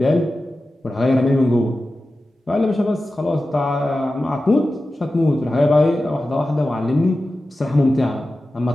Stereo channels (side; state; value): both; normal; correlation 0.94